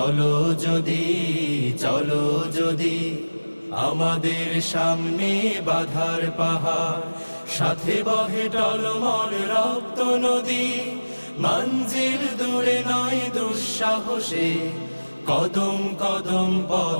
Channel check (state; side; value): inverted; both; correlation -1.00